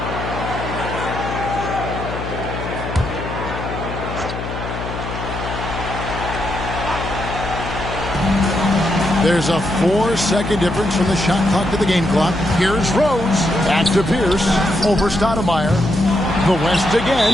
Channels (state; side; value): noise; left; hum, 7 dB below the sound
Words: There's a 4-second difference from the shot clock to the game clock. Here's Rose. Back to Pierce. Over Stoudemire. The West